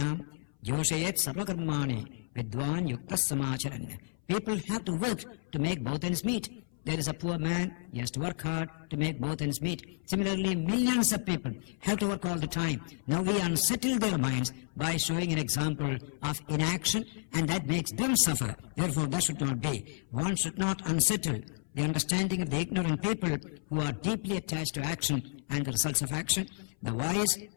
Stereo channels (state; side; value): silent; right; 57 dB below the other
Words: joshayet sarvakarmani vidwan yuktas samacharan. People have to work to make both ends meet. There is a poor man, he has to work hard to make both ends meet. Similarly, millions of people have to work all the time. Now we unsettle their minds by showing an example of inaction, and that makes them suffer. Therefore, that should not be. One should not unsettle the understanding of the ignorant people who are deeply attached to action and the results of action. The wise